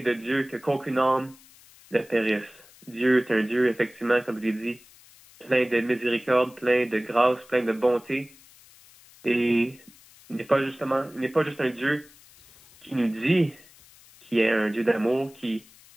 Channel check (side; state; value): left; noise; hiss, 25 dB below the sound